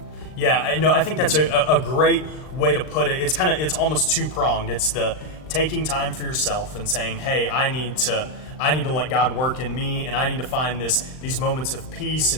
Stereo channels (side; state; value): right; late; 39 ms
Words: I think that's a great way to put it. It's almost two-pronged. It's the taking time for yourself and saying, hey, I need to let God work in me, and I need to find these moments of peace